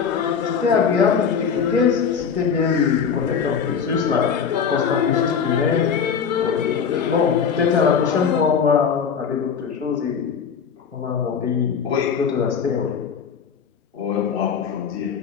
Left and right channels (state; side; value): quieter; right; 6.7 dB